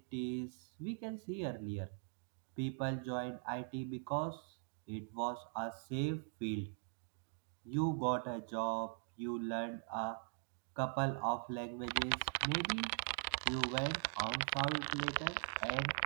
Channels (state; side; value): silent; left; 50 dB below the other